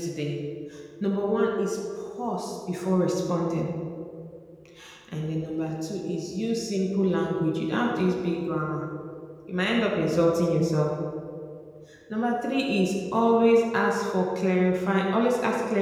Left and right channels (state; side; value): identical; both; correlation 1.00